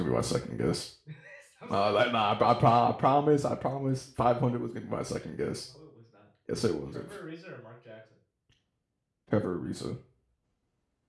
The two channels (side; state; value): both; identical; correlation 1.00